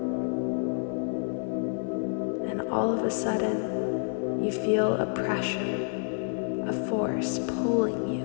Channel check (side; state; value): right; silent; digital silence